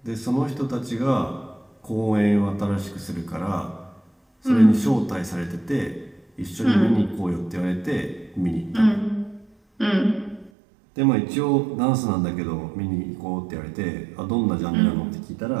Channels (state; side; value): drops out; left; at 10.5 s